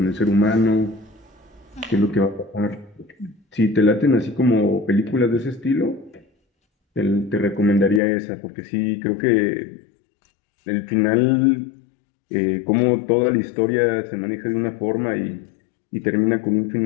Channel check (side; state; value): right; drops out; at 8.0 s